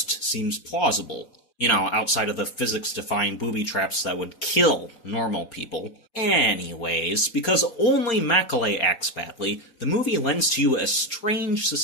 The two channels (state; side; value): late; right; 4.3 ms